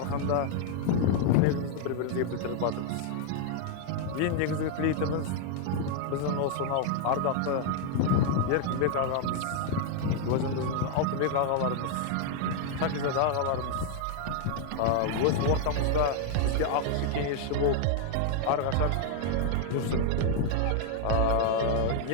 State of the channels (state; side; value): different; both; correlation 0.00